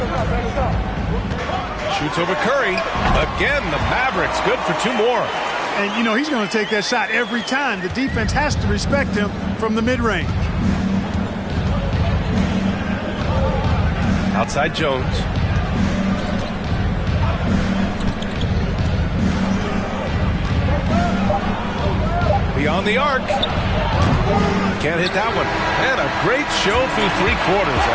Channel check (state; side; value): identical; both; correlation 1.00